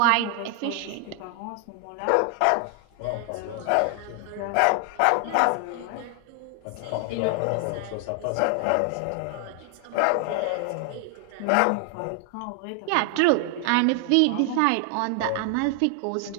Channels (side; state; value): both; different; correlation 0.00